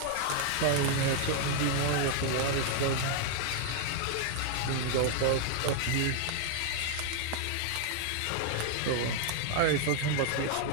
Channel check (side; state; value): both; different; correlation 0.00